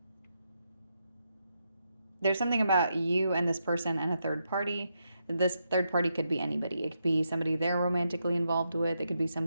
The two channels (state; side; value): inverted; both; correlation -0.83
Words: There's something about you and this person and a third party. This third party could be anybody. It could be somebody they're romantically involved with. It could be